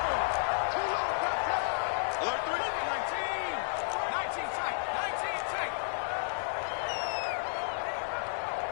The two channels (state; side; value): silent; right; digital silence